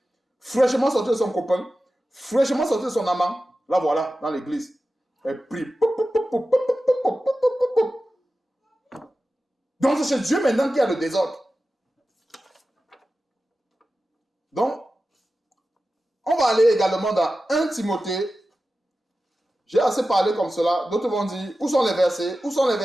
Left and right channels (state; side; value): normal; both; correlation 0.94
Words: fraîchement sorti de son copain, fraîchement sorti de son amant. Là, voilà, dans l'église. Elle prie. Donc, c'est chez Dieu maintenant qu'il y a le désordre. Donc, on va aller également dans 1 Timothée. J'ai assez parlé comme cela. D'autres vont dire, où sont les versets?